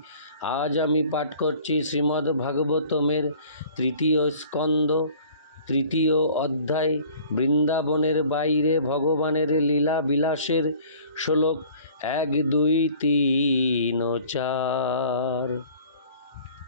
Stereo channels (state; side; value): inverted; both; correlation -0.50